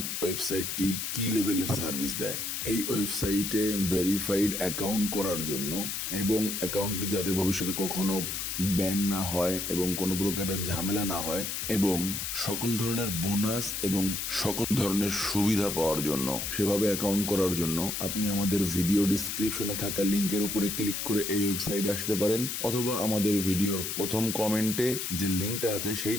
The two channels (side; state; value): left; noise; hiss, 3 dB below the sound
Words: ওয়েবসাইটটি কি লেভেলের সার্ভিস দেয়। এই ওয়েবসাইটে ভেরিফাইড অ্যাকাউন্ট করার জন্য এবং অ্যাকাউন্টটি যাতে ভবিষ্যতে কখনো ব্যান না হয় এবং কোনো প্রকারের ঝামেলা না হয় এবং সকল ধরনের বোনাস এবং সকল ধরনের সুবিধা পাওয়ার জন্য, সেভাবে অ্যাকাউন্ট করার জন্য আপনি আমাদের ভিডিও ডিসক্রিপশনে থাকা লিংকের উপরে ক্লিক করে এই ওয়েবসাইটে আসতে পারেন, অথবা আমাদের ভিডিওর প্রথম কমেন্টে যে লিংকটা আছে